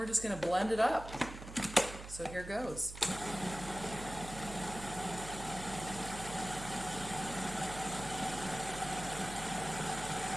just going to blend it up. So here goes.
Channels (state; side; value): noise; right; hum, 11 dB below the sound